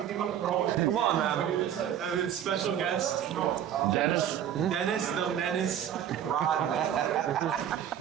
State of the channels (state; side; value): quieter; left; 10.0 dB